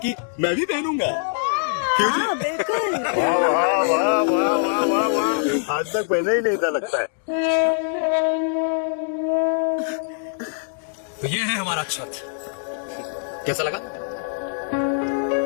मैं भी पहनूंगा। हाँ बिल्कुल। वाह वाह वाह वाह वाह वाह वाह, आज तक पहले ही नहीं था लगता है। तो ये है हमारा छत, कैसा लगा?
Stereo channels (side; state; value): right; silent; digital silence